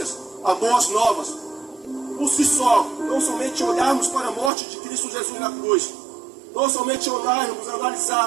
as boas novas. Por si só, não somente olharmos para a morte de Cristo Jesus na cruz, não somente olharmos,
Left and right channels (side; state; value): left; drops out; at 4.5 s